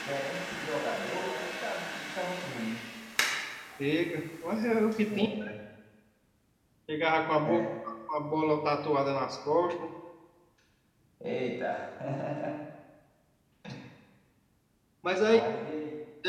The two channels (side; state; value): both; identical; correlation 1.00